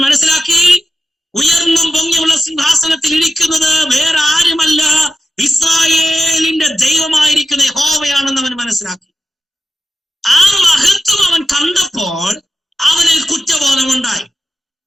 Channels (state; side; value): normal; both; correlation 0.94